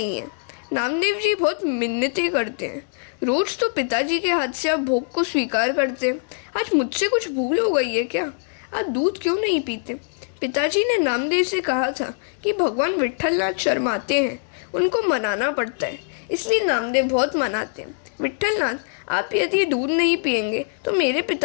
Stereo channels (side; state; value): right; silent; digital silence